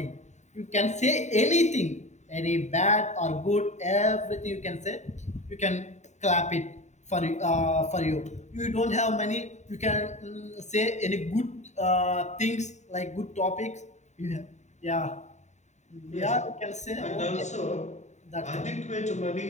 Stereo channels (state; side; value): late; right; 0.34 ms